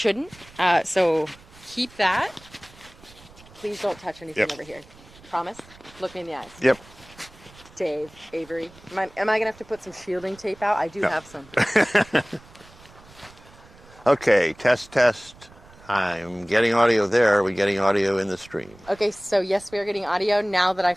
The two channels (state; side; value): noise; right; rumble, 24 dB below the sound